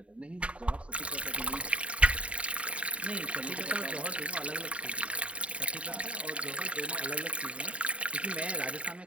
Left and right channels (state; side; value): late; left; 0.063 ms